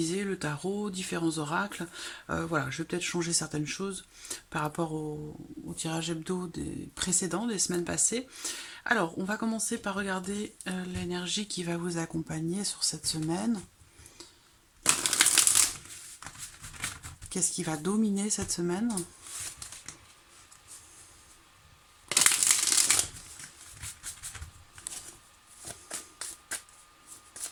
le tarot, différents oracles, voilà, je vais peut-être changer certaines choses par rapport au tirage hebdo des précédents, des semaines passées. Alors on va commencer par regarder l'énergie qui va vous accompagner sur cette semaine. Qu'est-ce qui va dominer cette semaine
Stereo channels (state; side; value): identical; both; correlation 1.00